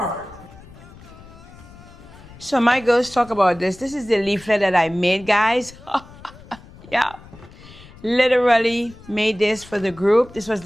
So my girls talk about this. This is the leaflet that I made, guys. Yeah. Literally made this for the group. This was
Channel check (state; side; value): noise; left; rumble, 20 dB below the sound